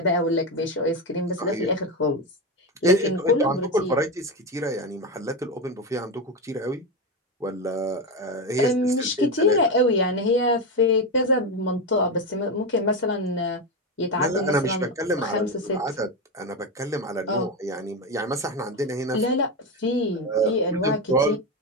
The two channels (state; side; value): normal; both; correlation 0.14